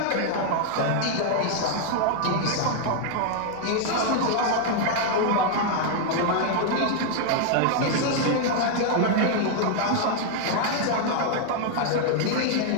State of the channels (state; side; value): different; both; correlation 0.00